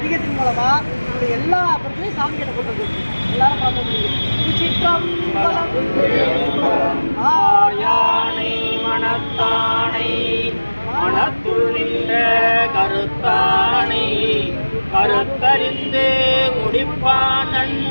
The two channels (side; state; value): both; inverted; correlation -1.00